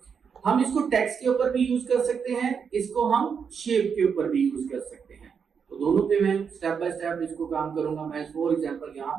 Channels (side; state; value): left; quieter; 6.5 dB